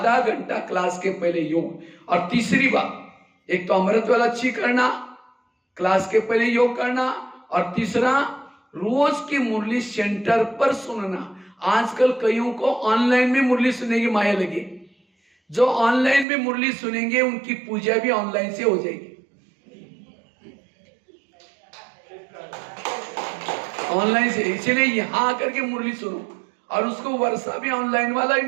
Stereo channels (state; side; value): drops out; left; at 16.2 s